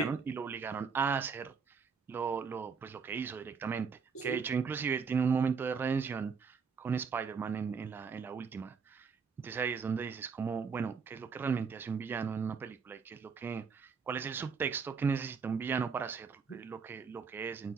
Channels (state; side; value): quieter; left; 5.7 dB